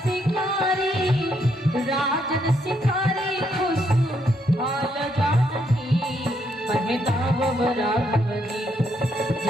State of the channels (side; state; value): both; normal; correlation 0.75